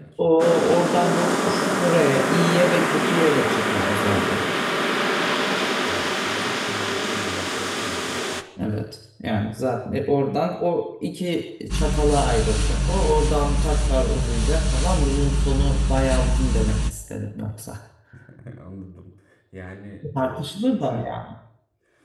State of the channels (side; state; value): both; identical; correlation 1.00